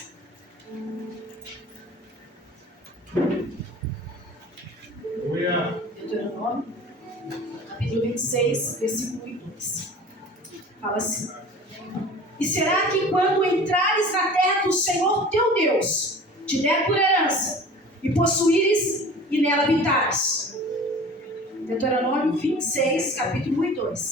Deuteronômio, capítulo 26, versículo 1 e 2. Fala assim: E será que quando entrares na terra que o Senhor teu Deus te der por herança, e possuíres e nela habitares. Deuteronômio 26, capítulo 1 e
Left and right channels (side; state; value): both; normal; correlation 0.42